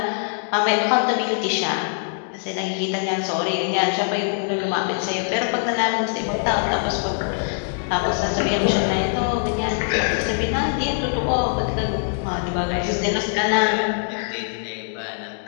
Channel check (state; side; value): silent; right; 64 dB below the other